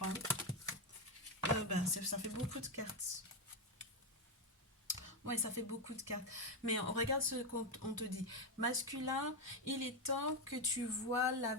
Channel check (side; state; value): both; normal; correlation 0.07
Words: Ben, ça fait beaucoup de cartes. Oui, ça fait beaucoup de cartes. Mais on regarde ce qu'on te dit. Masculin, il est temps que tu vois la